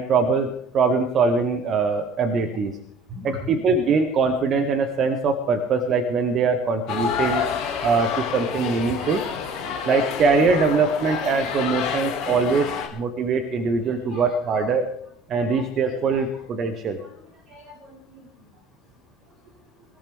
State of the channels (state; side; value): quieter; left; 3.1 dB